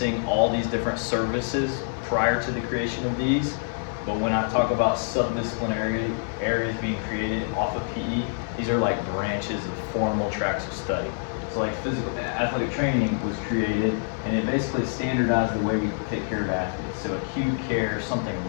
all these different services prior to the creation of these, but when I talk about subdisciplinary areas being created off of PE, these are like branches of formal tracks of study. So like athletic training was created, and it basically standardized the way we take care of athletes. So acute care, something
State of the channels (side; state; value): right; silent; 59 dB below the other